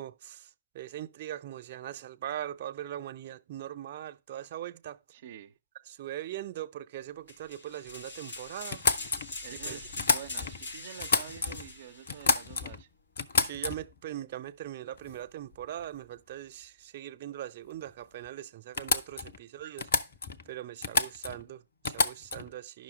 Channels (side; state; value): both; inverted; correlation -0.61